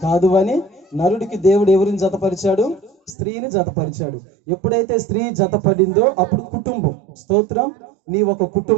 కాదు అని నరుడికి దేవుడు ఎవరిని జతపరిచాడు? స్త్రీని జతపరిచాడు. ఎప్పుడైతే స్త్రీ జతపడిందో అప్పుడు కుటుంబం. స్తోత్రం. నీ ఒక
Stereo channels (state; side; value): drops out; left; at 3.2 s